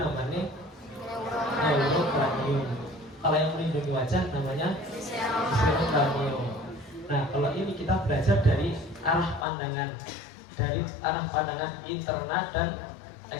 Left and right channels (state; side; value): drops out; right; at 9.5 s